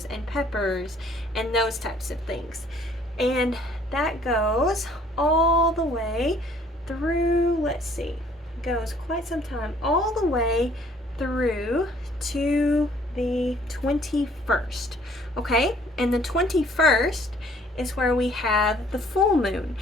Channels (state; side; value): normal; both; correlation 0.59